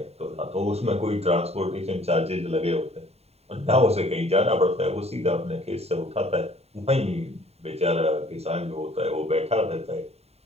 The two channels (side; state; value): left; late; 0.30 ms